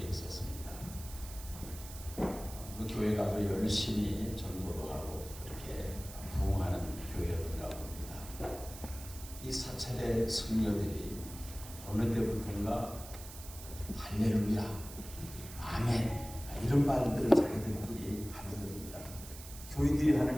있었습니다. 그 교회가 아주 열심히 전도도 하고 이렇게 부흥하는 교회였던가 봅니다. 이 사찰의 성녀들이 어느 때부터인가 할렐루야, 아멘 이런 말들을 자기들끼리 하는 겁니다. 교인들이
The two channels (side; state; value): right; noise; hiss, 14 dB below the sound